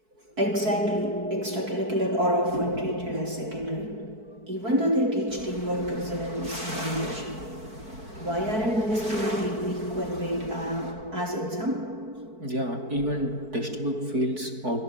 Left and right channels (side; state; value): left; late; 4.5 ms